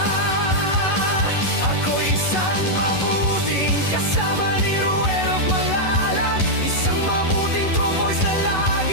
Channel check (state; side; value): late; right; 11 ms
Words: Ako isang mabuting kasama ni Ruel of Malalag, isang mabuting tromboys na